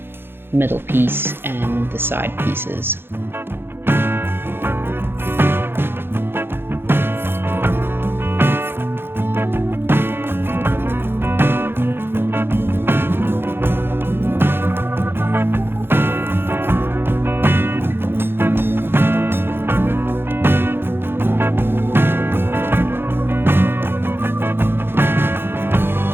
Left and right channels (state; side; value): late; left; 0.11 ms